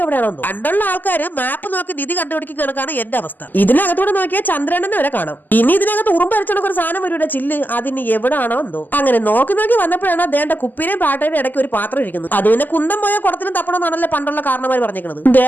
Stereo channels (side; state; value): right; late; 0.086 ms